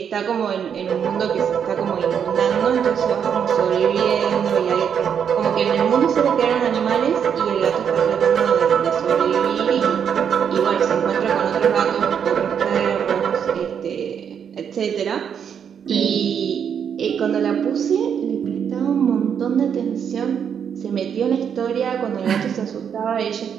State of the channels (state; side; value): quieter; left; 7.8 dB